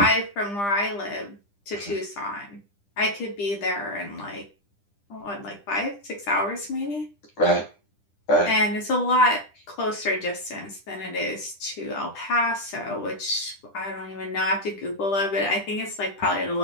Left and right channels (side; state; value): right; late; 10 ms